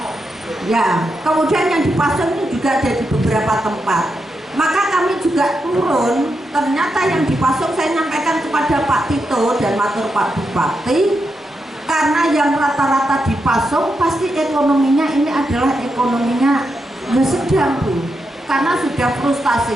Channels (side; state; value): both; normal; correlation 0.85